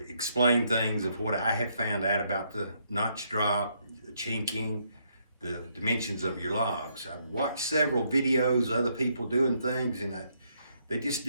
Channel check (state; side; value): inverted; both; correlation -0.73